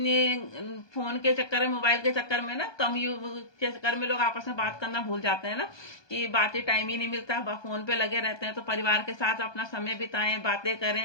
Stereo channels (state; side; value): late; right; 1.2 ms